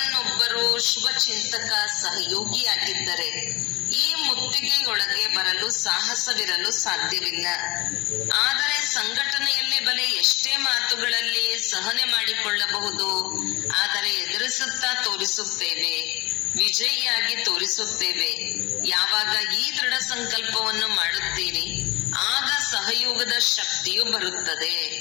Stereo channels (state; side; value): quieter; right; 22.4 dB